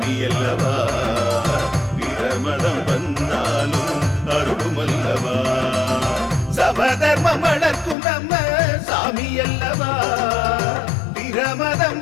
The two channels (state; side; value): drops out; right; at 8.0 s